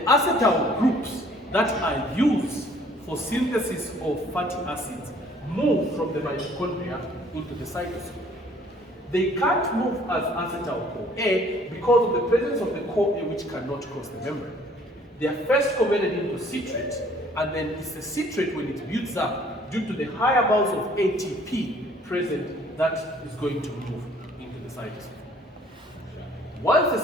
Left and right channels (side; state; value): both; normal; correlation 0.57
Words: acetyl groups that are used for synthesis of fatty acids move from the mitochondria into the cytosol. They can't move as acetyl-CoA because of the presence of the CoA which cannot cross the membrane. They are first converted into citrate, and then it's the citrate when it builds up due to the high amounts of ATP present that is going to move into the cytosol. Once the